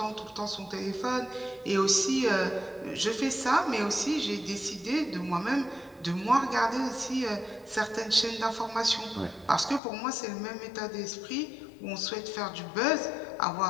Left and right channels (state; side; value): drops out; right; at 9.8 s